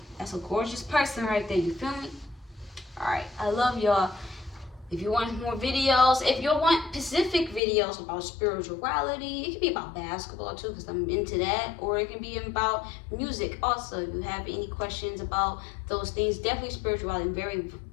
That's a gorgeous person right there. You feel me? Alright. I love y'all. If you want more videos, if you want specific videos about spirituality, it can be about basketball too, because I'm into that, or it can be about music also. If you have any questions about those things, definitely spirituality. I'm very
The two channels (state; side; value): drops out; right; at 7.6 s